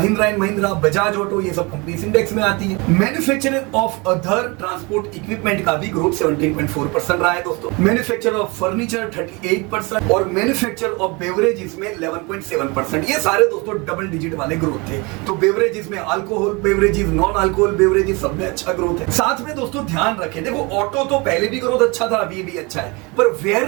and Mahindra, Bajaj auto, ये सब कंपनीज इंडेक्स में आती है। Manufacturer of other transport equipment का भी ग्रोथ 17.4% रहा है दोस्तों। मैन्युफैक्चरर ऑफ फर्नीचर 38% और मैन्युफैक्चरर ऑफ बेवरेजेस में 11.7%। ये सारे दोस्तों डबल डिजिट वाले ग्रोथ थे। तो बेवरेजेस में alcohol beverages, non alcohol beverages, सब में अच्छा ग्रोथ है। साथ में दोस्तों ध्यान रखें, देखो ऑटो तो पहले भी ग्रोथ अच्छा था, अभी भी अच्छा है, पर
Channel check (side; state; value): left; quieter; 27.3 dB